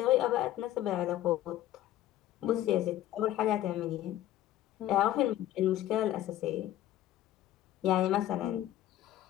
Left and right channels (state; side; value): quieter; right; 13.4 dB